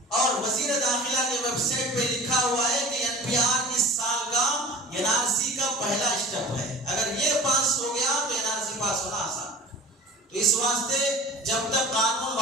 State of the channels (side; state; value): both; normal; correlation 0.40